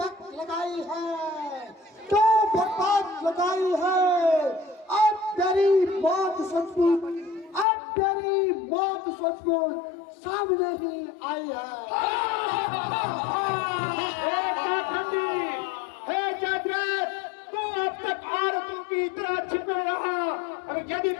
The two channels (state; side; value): drops out; right; at 7.7 s